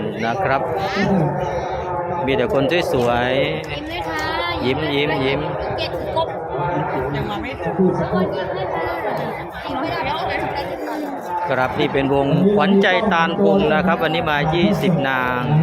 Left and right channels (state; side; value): identical; both; correlation 1.00